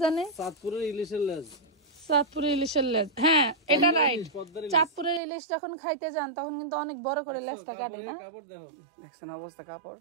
জানে? চাঁদপুরের ইলিশের লেজ, চাঁদপুরের ইলিশের লেজ, হ্যাঁ এটা রাইট। চাঁদপুরের ইলিশ যখন খাইতে যান তখন কিন্তু অনেক বড় করে লেজটা কাটে না? কাপড় দেখো, দেখছেন অবস্থা, কাপড়,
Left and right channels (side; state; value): left; drops out; at 5.2 s